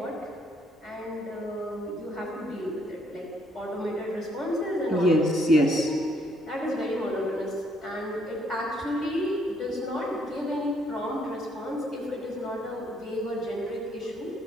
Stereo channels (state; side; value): normal; both; correlation 0.69